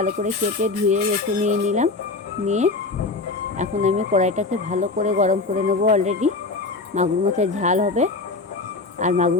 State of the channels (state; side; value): quieter; right; 3.6 dB